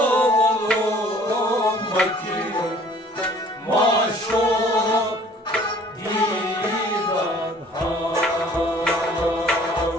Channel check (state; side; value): normal; both; correlation 0.54